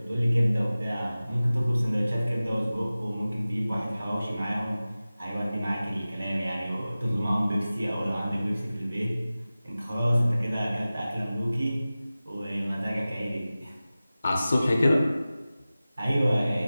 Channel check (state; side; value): inverted; both; correlation -0.97